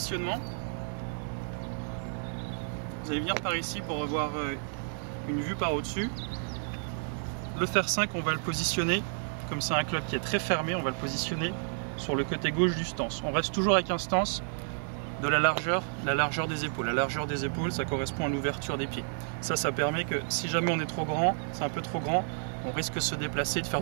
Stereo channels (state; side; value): silent; left; 57 dB below the other